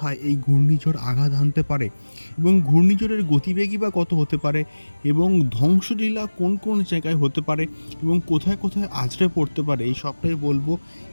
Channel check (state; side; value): inverted; both; correlation -1.00